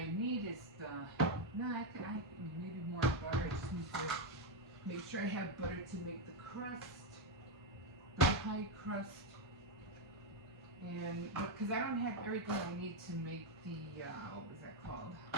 need is I maybe more butter. I just need to make sure I have butter to make the crust, the pie crust. And because I don't have everything I need to make the what was that called?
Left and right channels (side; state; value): both; normal; correlation 0.04